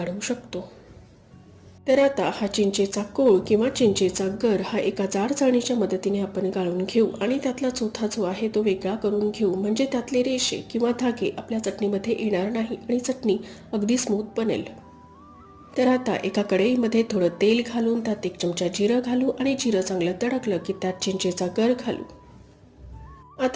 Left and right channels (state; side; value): identical; both; correlation 1.00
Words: शकतो। तर आता हा चिंचेचा कोळ किंवा चिंचेचा गर हा एका जाड चाळणीच्या मदतीने आपण गाळून घेऊ आणि त्यातला चोथा जो आहे तो वेगळा करून घेऊ, म्हणजे त्यातले रेषे किंवा धागे आपल्या चटणीमध्ये येणार नाही आणि चटणी अगदी स्मूथ बनेल। तर आता एका कढईमध्ये थोडं तेल घालून त्यात 1 चमचा जिरं घालू आणि जिरं चांगलं तडकलं की त्यात चिंचेचा गर घालू।